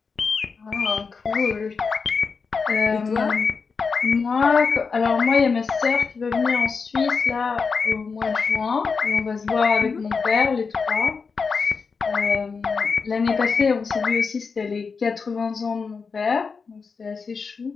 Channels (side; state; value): right; quieter; 5.1 dB